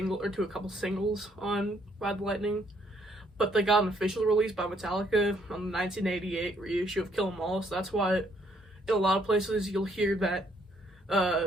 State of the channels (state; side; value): normal; both; correlation 0.69